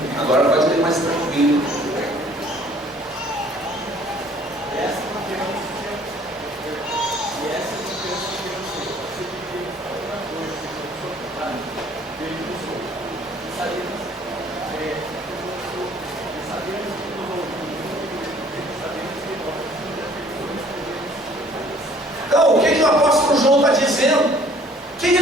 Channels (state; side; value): normal; both; correlation 0.56